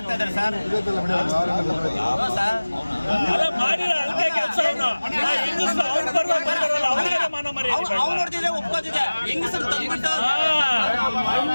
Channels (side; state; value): both; inverted; correlation -1.00